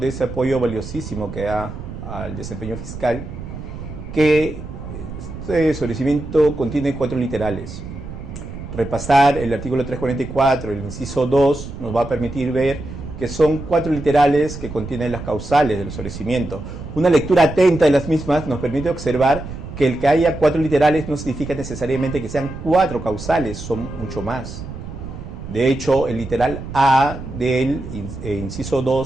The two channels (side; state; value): right; noise; rumble, 10 dB below the sound